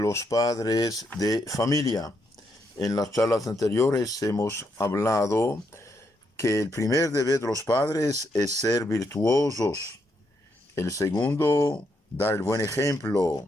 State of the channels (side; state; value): both; normal; correlation 0.78